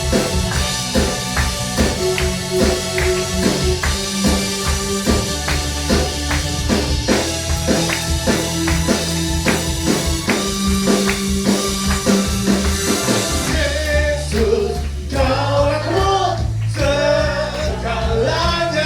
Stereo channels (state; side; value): identical; both; correlation 1.00